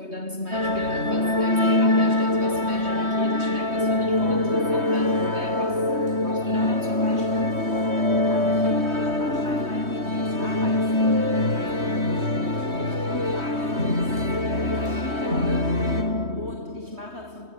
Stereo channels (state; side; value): late; left; 3.2 ms